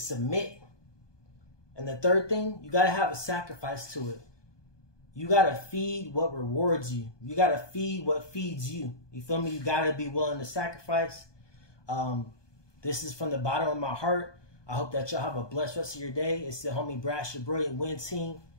And the 3rd thing, you got to have a sacrifice to it. You got to feed what rewards you. You got to feed what feeds you. You feel me? You got to be willing to sacrifice. This is from the bottom of my heart. I hope that y'all have a blessed rest of your day. It's the homie Brash da Brilliant Win Team.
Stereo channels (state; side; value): late; right; 1.2 ms